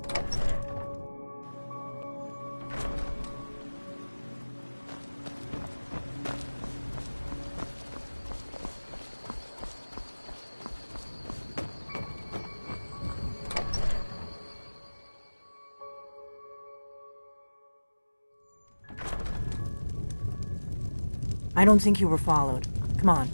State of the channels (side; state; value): both; inverted; correlation -1.00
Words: I don't think you were followed. Come on,